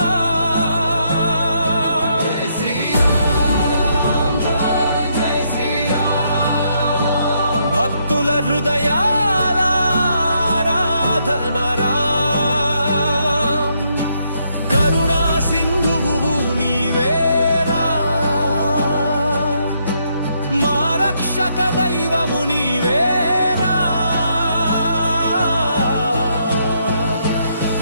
జై శ్రీరామ్ జై శ్రీరామ్ భక్తుల హృదయాల ఆరాధన రామ్ కరుణా సింధువు నీవేరా మా రక్షక దైవము నీవేరా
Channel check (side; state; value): both; inverted; correlation -0.75